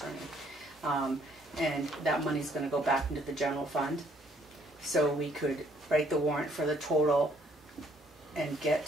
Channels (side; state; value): both; normal; correlation 0.65